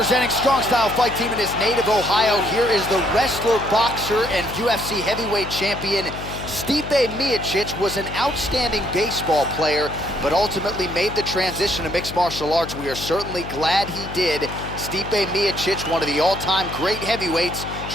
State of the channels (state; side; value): noise; left; hum, 10 dB below the sound